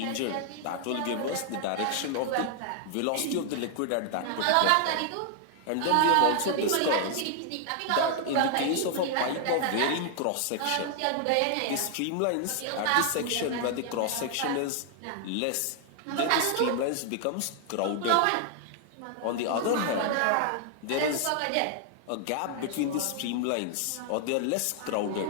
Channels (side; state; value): both; different; correlation 0.00